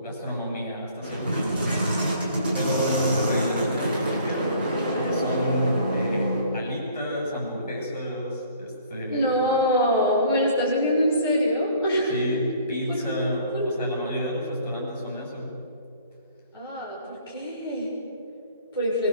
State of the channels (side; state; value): both; inverted; correlation -0.55